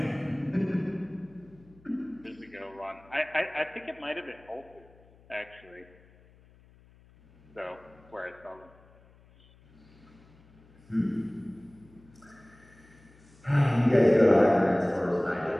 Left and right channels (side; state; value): left; noise; hum, 27 dB below the sound